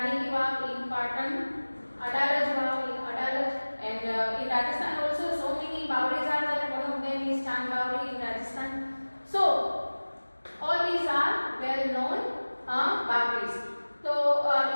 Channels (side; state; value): both; inverted; correlation -1.00